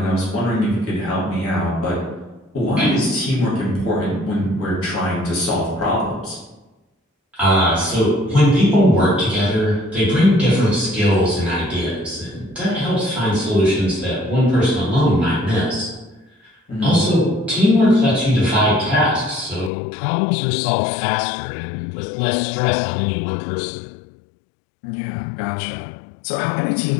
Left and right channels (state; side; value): drops out; right; at 19.7 s